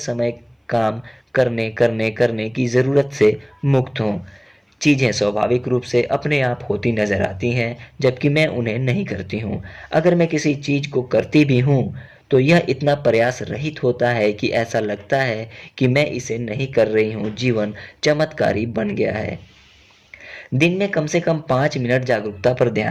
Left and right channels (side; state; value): both; identical; correlation 1.00